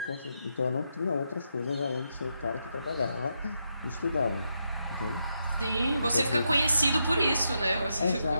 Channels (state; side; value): inverted; both; correlation -0.83